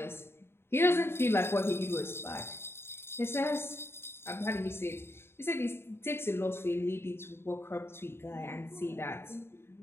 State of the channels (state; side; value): late; right; 0.12 ms